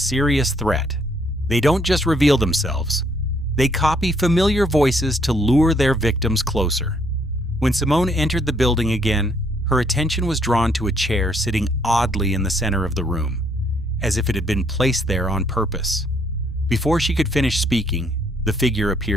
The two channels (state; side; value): normal; both; correlation 0.68